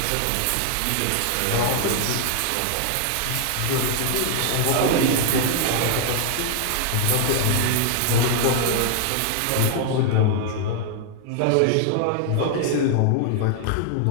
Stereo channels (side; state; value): both; different; correlation 0.00